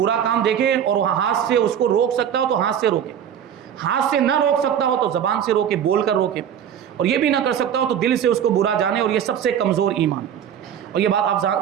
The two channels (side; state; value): left; quieter; 9.1 dB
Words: کام دیکھے اور ہاتھ سے اس کو روک سکتا ہو تو ہاتھ سے روکے، ہاتھ سے نہ روک سکتا ہو تو زبان سے روکے، بول کر روکے، اور یہ بھی نہ کر سکتا ہو تو دل سے اس کو برا جانے. اور یہ سب سے کمزور ایمان. اور یہ بات